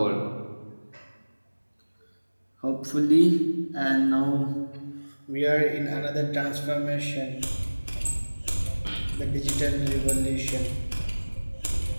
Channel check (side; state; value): both; inverted; correlation -1.00